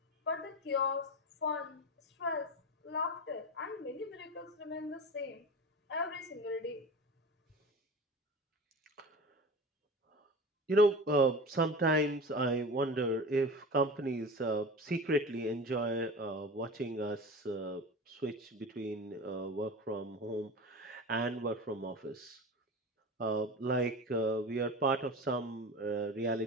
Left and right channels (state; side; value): normal; both; correlation 0.32